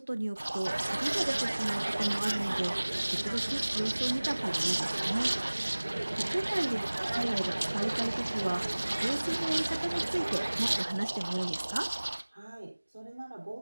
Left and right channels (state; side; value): inverted; both; correlation -1.00